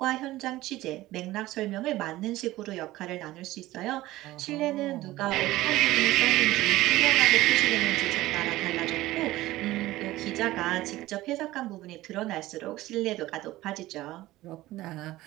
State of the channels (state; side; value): quieter; left; 17.0 dB